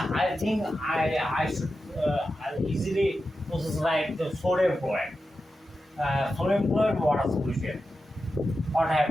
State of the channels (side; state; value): both; normal; correlation 0.91